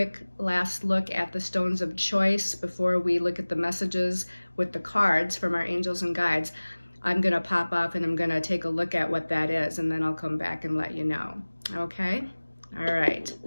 last look at the stones of choice before we look at the messages with the cards from our angels and guides, I'm going to pop off and I'm going to take a look at what that is, and then I'll come back and let you know. Okay? All right.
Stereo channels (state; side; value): inverted; both; correlation -1.00